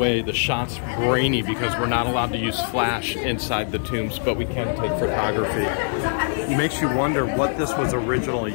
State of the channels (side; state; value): right; silent; digital silence